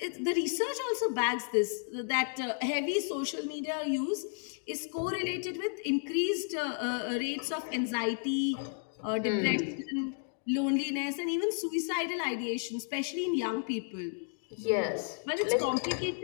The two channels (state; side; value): silent; right; 56 dB below the other